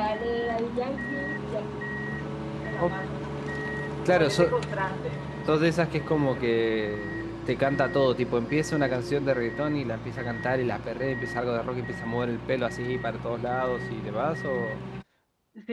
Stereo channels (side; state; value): both; identical; correlation 1.00